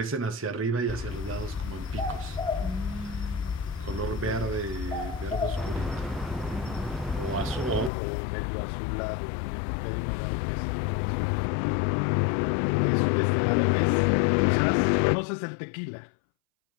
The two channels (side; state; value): right; drops out; at 7.9 s